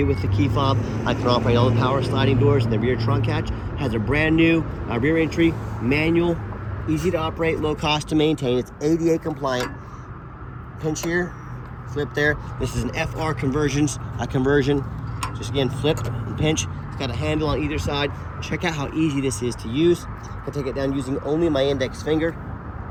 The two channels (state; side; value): identical; both; correlation 1.00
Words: it with the key fob. I can operate all the power sliding doors and the rear trunk hatch. Has a brand new rear entry, manual, easy to operate, low cost to maintain. It's ADA compliant. Pinch here, flip there. This is an FR conversion. Just again, flip and pinch. It's got a handle on either side. Check out how easy this is to use. I can take it down using only my index finger.